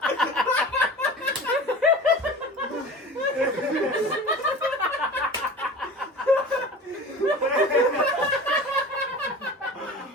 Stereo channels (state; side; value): normal; both; correlation 0.37